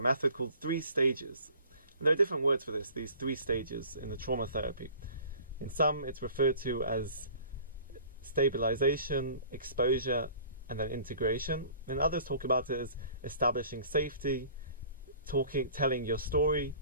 method called 3 stages. And there are different words for this, these 3 stages in the trauma therapy. In some, it's referred to as stabilization, exposure, and then integration. And others talk about it as establishing safety, telling your story,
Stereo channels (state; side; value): inverted; both; correlation -0.49